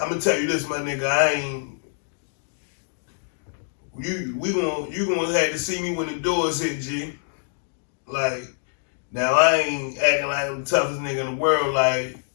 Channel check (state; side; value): silent; right; digital silence